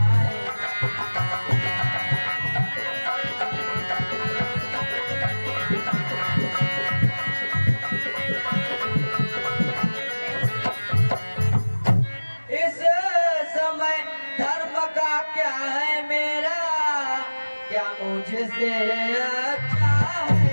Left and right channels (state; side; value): inverted; both; correlation -1.00